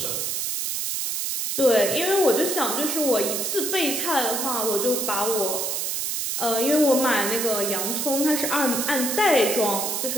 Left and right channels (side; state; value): right; noise; hiss, 1 dB below the sound